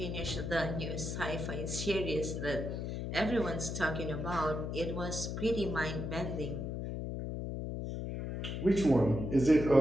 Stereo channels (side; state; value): left; noise; hum, 4 dB below the sound